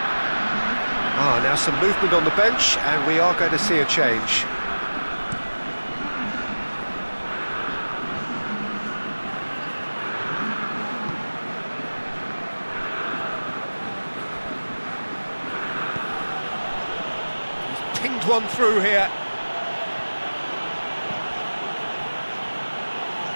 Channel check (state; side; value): inverted; both; correlation -1.00